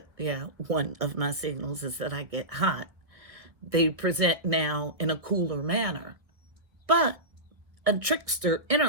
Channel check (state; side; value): late; left; 1.5 ms